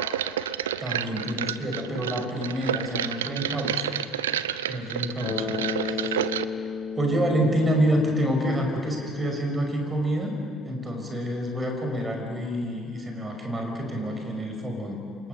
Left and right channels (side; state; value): both; normal; correlation 0.49